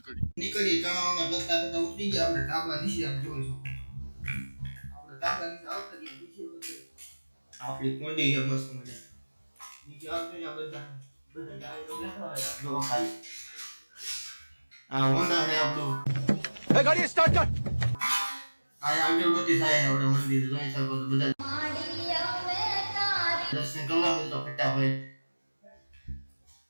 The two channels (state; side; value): inverted; both; correlation -1.00